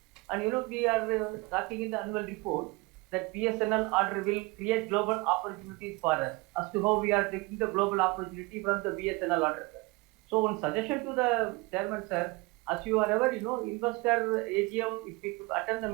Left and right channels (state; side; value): quieter; left; 24.8 dB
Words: And we are talking in the annual report that BSNL order will create global opportunities for us as to how we are taking the global opportunity from the BSNL order, sir. So one suggestion to the chairman, sir, as you are aware, investor AGM, if we attend the